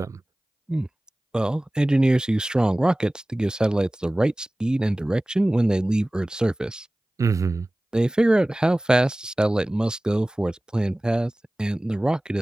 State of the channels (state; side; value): normal; both; correlation 0.98